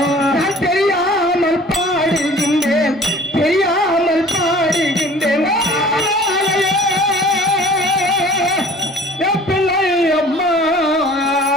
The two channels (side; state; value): both; normal; correlation 0.47